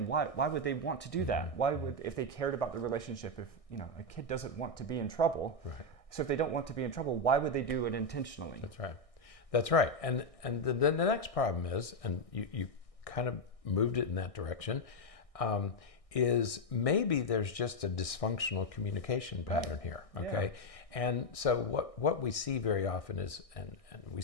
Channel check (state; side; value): late; right; 1.6 ms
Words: why would they want to do that? Why would, if they cared about the relationship, if a kid doesn't want to be in trouble, so if they don't want to be in trouble, why would they do it intentionally? That's right. That's right. And the next problem is, and you kind of moved it in that direction, is maybe there's just a dysfunctional communication pattern here, okay? Yeah. And so what we see very often is, and we